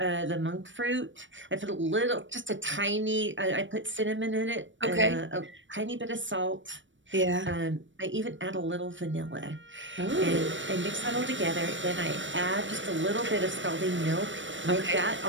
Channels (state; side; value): late; left; 0.55 ms